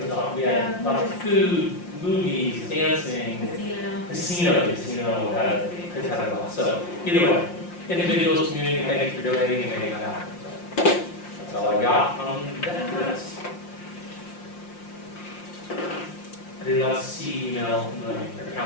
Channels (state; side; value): late; right; 5.7 ms